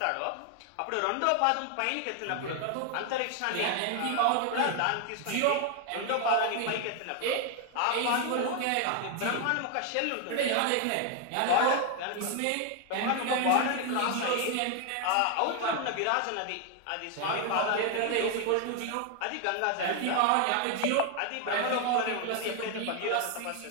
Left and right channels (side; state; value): both; different; correlation 0.01